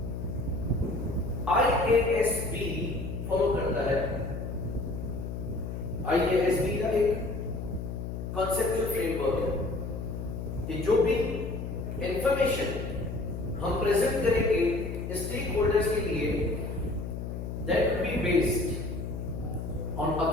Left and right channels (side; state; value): left; noise; hum, 5 dB below the sound